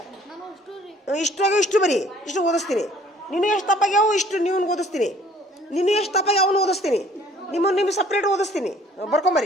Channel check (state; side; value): normal; both; correlation 0.56